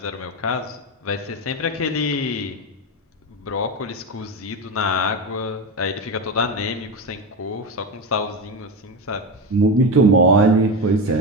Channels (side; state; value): both; normal; correlation 0.17